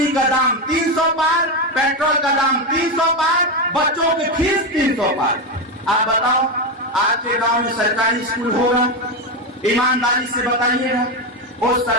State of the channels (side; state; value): both; normal; correlation 0.11